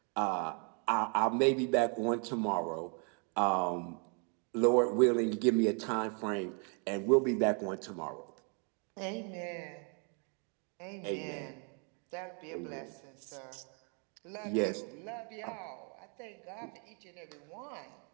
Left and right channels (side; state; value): left; quieter; 38.2 dB